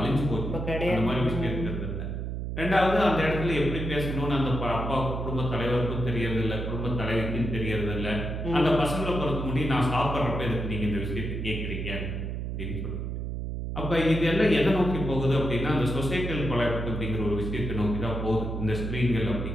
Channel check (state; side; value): noise; right; hum, 4 dB below the sound